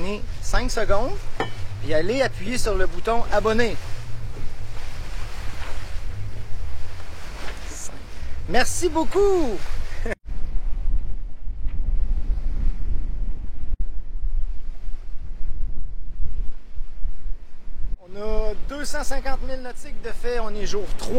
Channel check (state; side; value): identical; both; correlation 1.00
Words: 5 secondes et allez appuyer sur le bouton abonner. Merci beaucoup! On a 250 000 nautiques de fait, on est jour